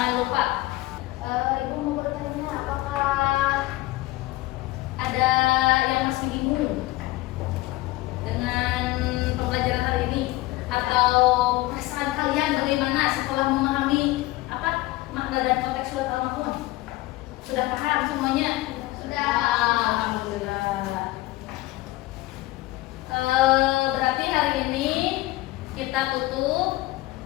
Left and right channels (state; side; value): quieter; right; 18.7 dB